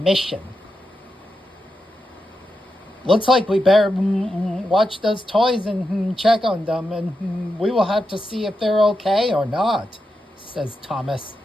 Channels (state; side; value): normal; both; correlation 0.87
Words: Looks like we better watch those toys and check on them, and we will have to see if they're okay or not, says Thomas.